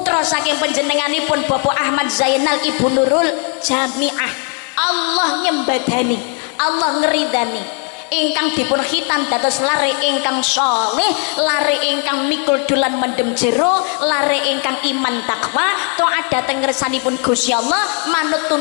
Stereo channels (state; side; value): quieter; right; 38.5 dB